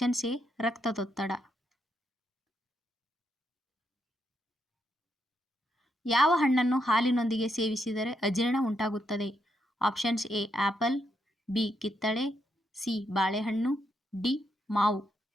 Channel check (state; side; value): normal; both; correlation 0.80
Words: ಎ ರಕ್ತದೊತ್ತಡ. ಯಾವ ಹಣ್ಣನ್ನು ಹಾಲಿನೊಂದಿಗೆ ಸೇವಿಸಿದರೆ ಅಜೀರ್ಣ ಉಂಟಾಗುತ್ತದೆ? ಆಪ್ಷನ್ಸ್ ಎ ಆಪಲ್, ಬಿ ಕಿತ್ತಳೆ, ಸಿ ಬಾಳೆಹಣ್ಣು, ಡಿ ಮಾವು.